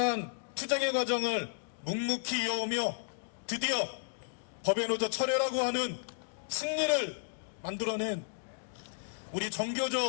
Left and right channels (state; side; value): silent; right; digital silence